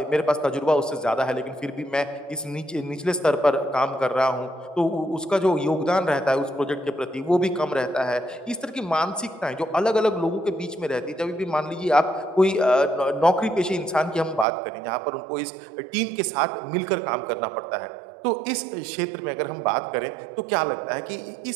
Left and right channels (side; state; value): left; drops out; at 14.5 s